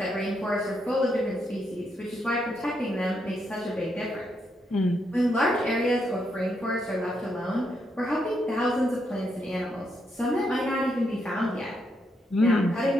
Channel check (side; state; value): both; normal; correlation 0.79